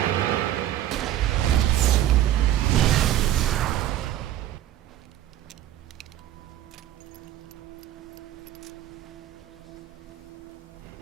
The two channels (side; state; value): left; quieter; 12.6 dB